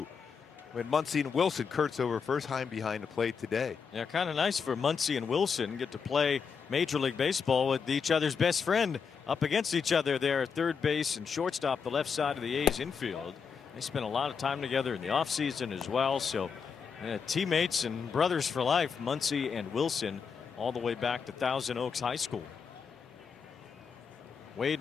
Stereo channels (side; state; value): right; quieter; 6.1 dB